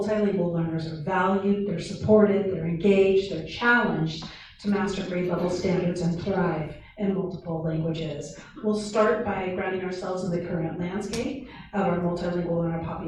learners are valued, they're supported, they're engaged, they're challenged to master grade level standards and thrive in multiple languages. We'll start by grounding ourselves in the current landscape of our multilingual learner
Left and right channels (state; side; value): identical; both; correlation 1.00